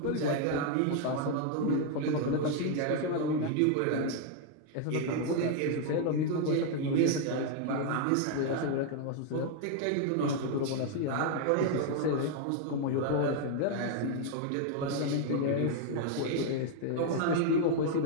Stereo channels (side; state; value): both; different; correlation 0.00